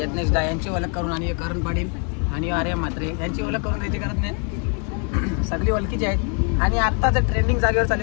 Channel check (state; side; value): quieter; right; 39.5 dB